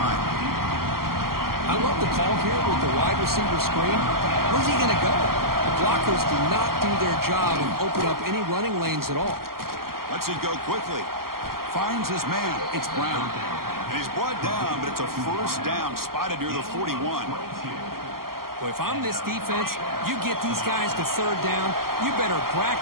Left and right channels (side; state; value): left; late; 0.92 ms